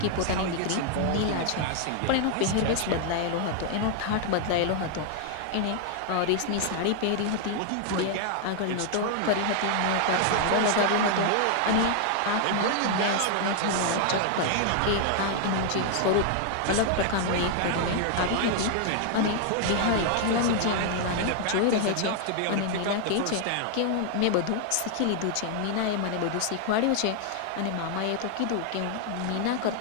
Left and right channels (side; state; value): both; different; correlation 0.00